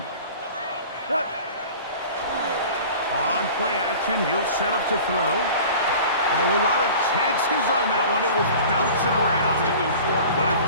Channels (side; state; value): both; inverted; correlation -0.41